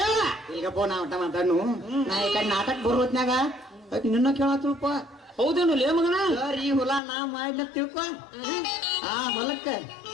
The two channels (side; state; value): right; drops out; at 7.0 s